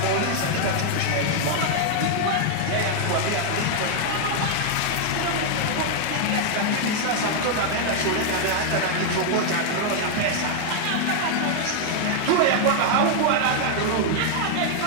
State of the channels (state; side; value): different; both; correlation 0.00